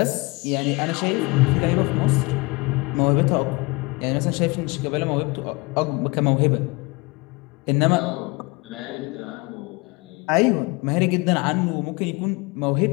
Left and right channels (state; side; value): quieter; right; 26.4 dB